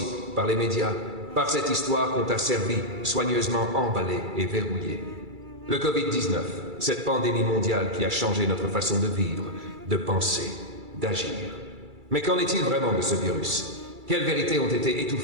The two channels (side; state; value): left; late; 2.3 ms